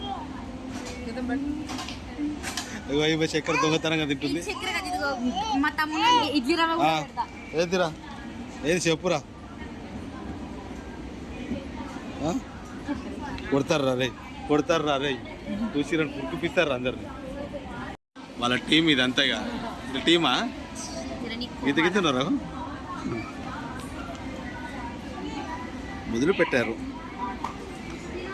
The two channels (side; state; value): both; identical; correlation 1.00